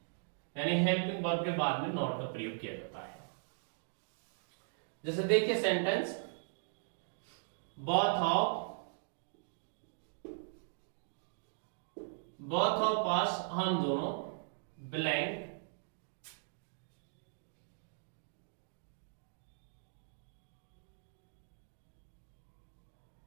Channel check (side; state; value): left; silent; digital silence